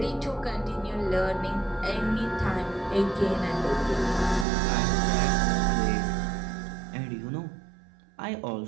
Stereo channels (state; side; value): drops out; left; at 4.5 s